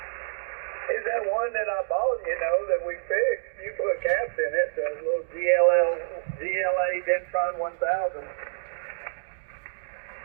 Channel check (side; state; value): left; silent; digital silence